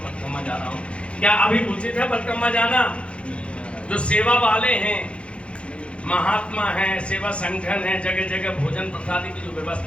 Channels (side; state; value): right; late; 0.060 ms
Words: जा रहा हूँ। क्या अभी उचित है परिक्रमा जाना? जो सेवा वाले हैं, महात्मा हैं, सेवा संगठन है, जगह जगह भोजन प्रसादी की जो